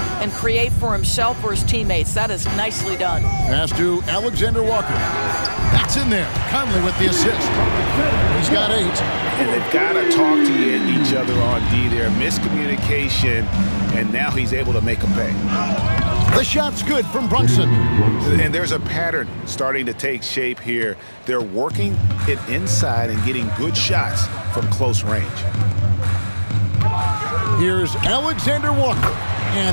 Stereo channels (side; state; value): both; inverted; correlation -1.00